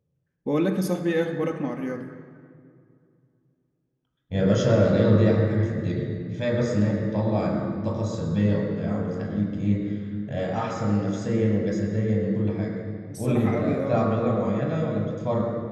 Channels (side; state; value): both; identical; correlation 1.00